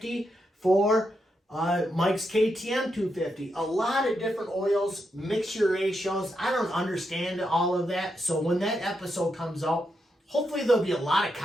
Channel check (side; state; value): both; normal; correlation 0.83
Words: for Mike's KTM 250. A lot of different oils, mixture ratios. I don't understand all of that. So when that episode comes out, hopefully there'll be a lot of